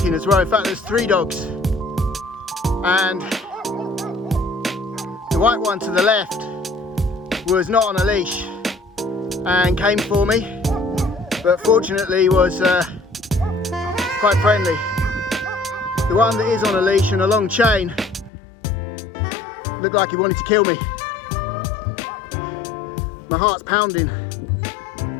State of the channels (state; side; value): drops out; right; at 18.3 s